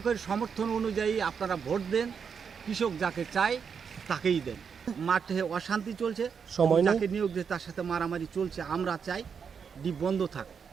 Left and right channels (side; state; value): left; quieter; 6.5 dB